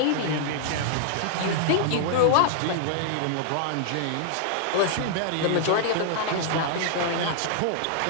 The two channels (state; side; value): different; both; correlation -0.01